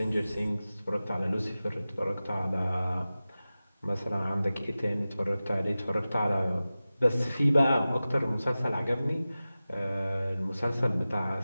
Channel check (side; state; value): both; inverted; correlation -0.96